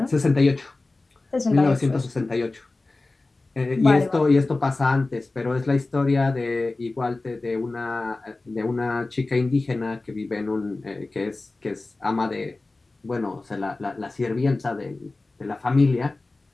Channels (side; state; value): right; quieter; 3.2 dB